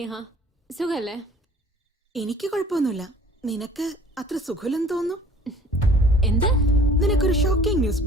സുഖല്ലേ? എനിക്ക് കുഴപ്പമൊന്നുമില്ല. നിനക്ക് അത്ര സുഖമില്ലെന്ന് തോന്നുന്നു. എന്ത്? നിനക്കൊരു ഷോക്കിംഗ് ന്യൂസ്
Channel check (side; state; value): both; normal; correlation 0.51